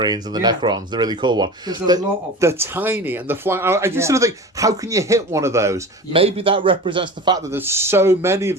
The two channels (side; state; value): both; normal; correlation 0.34